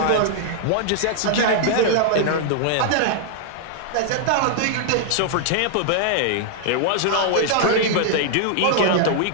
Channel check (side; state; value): both; different; correlation -0.01